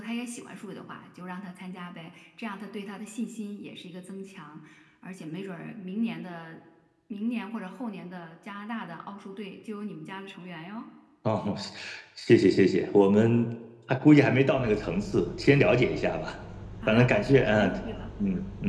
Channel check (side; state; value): both; identical; correlation 1.00